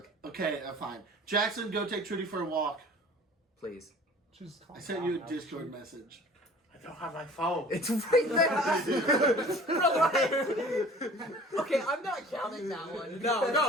Okay, fine. Jackson, go take Trudy for a walk. Please. She's I sent you a Discord message. I don't have my phone. It's right there. Okay, I'm not counting that one.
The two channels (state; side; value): normal; both; correlation 0.46